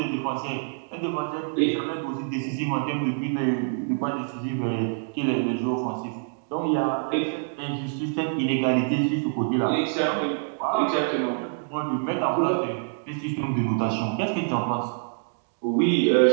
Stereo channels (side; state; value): left; silent; digital silence